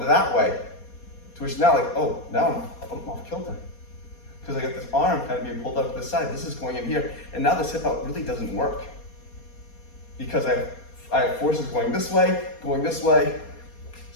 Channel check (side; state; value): right; late; 4.2 ms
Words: that way. To which now like, oh, now I'm off kilter. Because I got this arm kind of being pulled up to the side. This is going in here. And now this hip out really doesn't work. Because I have forces going this way,